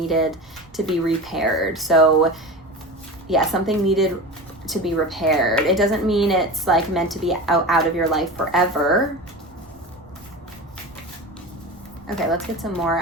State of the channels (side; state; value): right; noise; rumble, 28 dB below the sound